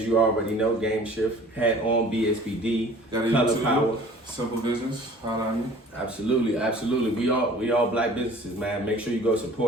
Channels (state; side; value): normal; both; correlation 0.48